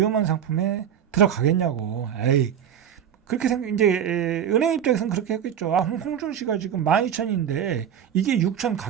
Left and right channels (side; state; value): left; quieter; 9.1 dB